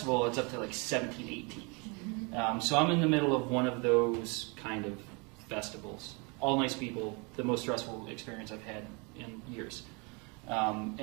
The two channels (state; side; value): quieter; left; 31.0 dB